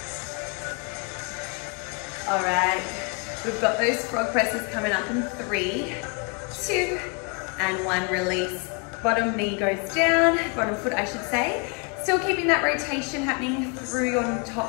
All right, we've got those frog presses coming up in 3, 2, and 1. Release. Bottom knee goes down, bottom foot I should say. Still keeping that rotation happening through your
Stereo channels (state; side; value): quieter; right; 33.1 dB